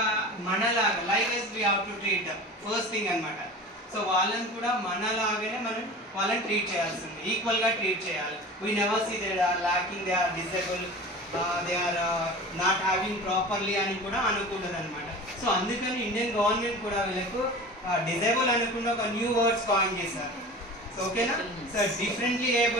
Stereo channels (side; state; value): both; normal; correlation 0.36